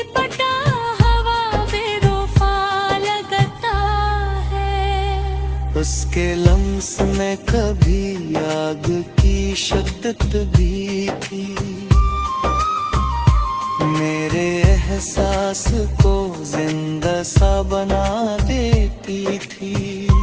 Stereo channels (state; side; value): identical; both; correlation 1.00